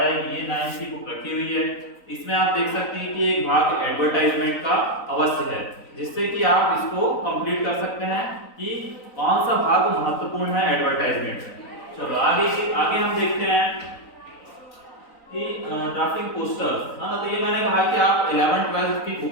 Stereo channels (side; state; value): right; late; 3.9 ms